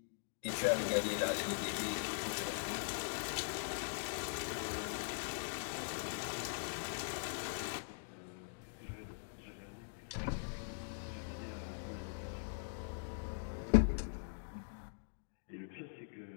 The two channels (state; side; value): silent; right; digital silence